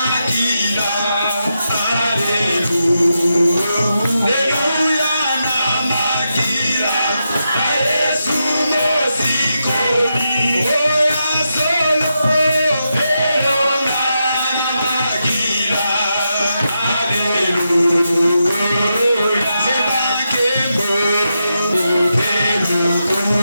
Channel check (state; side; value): inverted; both; correlation -0.86